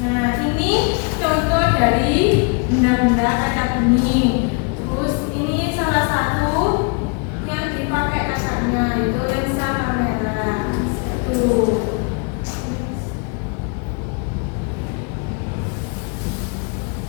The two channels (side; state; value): right; quieter; 36.2 dB